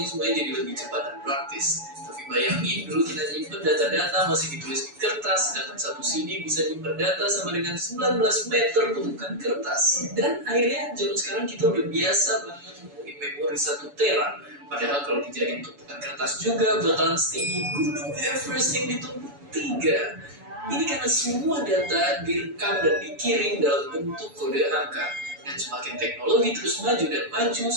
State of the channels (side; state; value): left; late; 7.0 ms